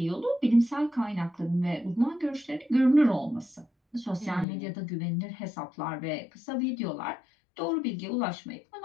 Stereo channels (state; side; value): drops out; right; at 4.5 s